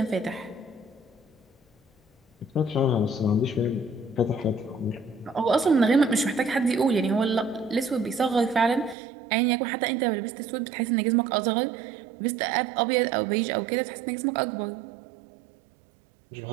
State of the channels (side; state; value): left; drops out; at 9.0 s